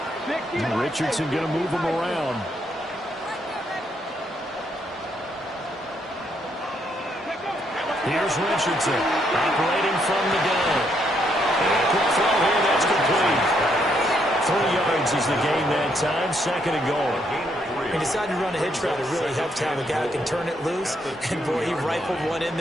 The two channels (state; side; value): normal; both; correlation 0.74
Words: Richardson going to move him around. Here's Richardson operating from the gun. And a quick throw here, that's complete. 3 yards is the gain that time, second and goal. He decided to run a hitch route. It really helped to have a guy who can turn it loose. And, boy, he rifled one in